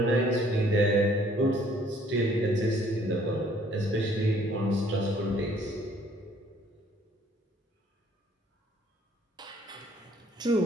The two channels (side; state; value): both; normal; correlation 0.60